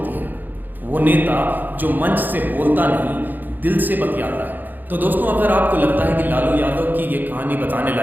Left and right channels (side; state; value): left; late; 0.087 ms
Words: है, वो नेता जो मंच से बोलता नहीं, दिल से बतियाता है। तो दोस्तों, अगर आपको लगता है कि लालू यादव की ये कहानी बताने